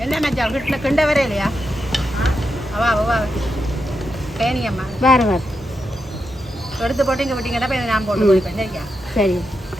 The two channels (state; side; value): normal; both; correlation 0.86